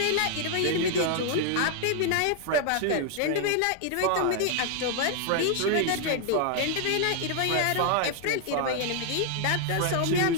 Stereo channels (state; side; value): different; both; correlation 0.00